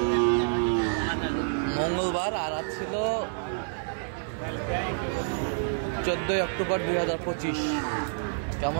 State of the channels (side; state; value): left; silent; 59 dB below the other